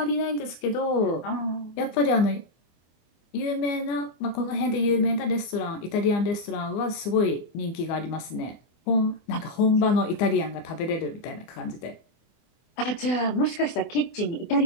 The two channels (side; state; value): right; late; 24 ms